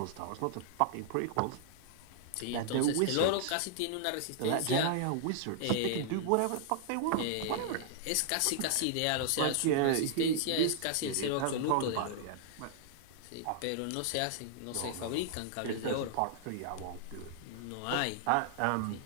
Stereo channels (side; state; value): both; different; correlation -0.01